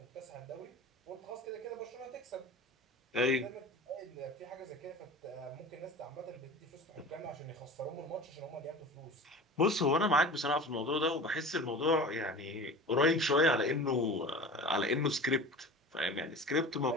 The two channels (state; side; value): normal; both; correlation 0.36